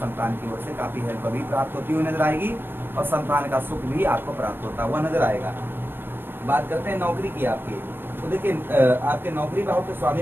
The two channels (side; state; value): left; late; 0.098 ms